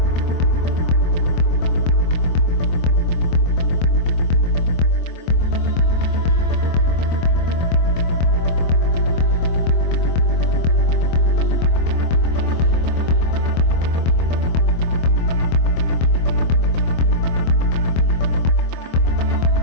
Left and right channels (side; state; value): right; late; 24 ms